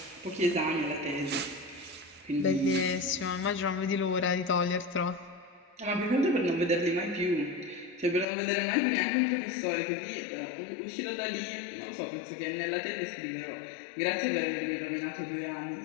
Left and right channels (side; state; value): right; drops out; at 8.2 s